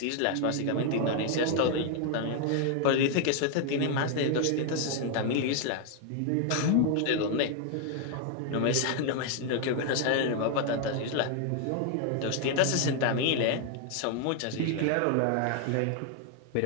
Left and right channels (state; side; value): different; both; correlation 0.00